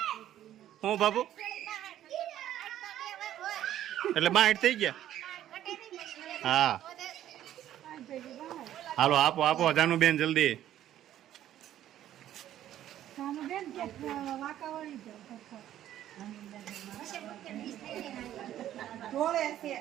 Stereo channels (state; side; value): quieter; left; 12.1 dB